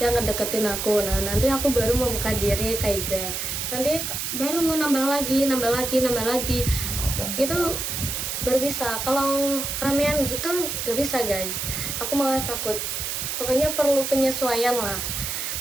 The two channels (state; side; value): noise; right; hiss, 3 dB below the sound